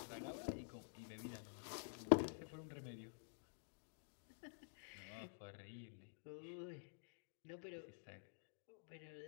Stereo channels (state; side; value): silent; right; digital silence